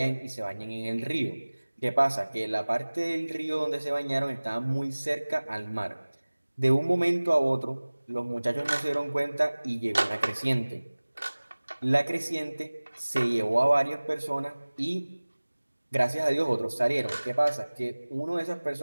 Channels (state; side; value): inverted; both; correlation -1.00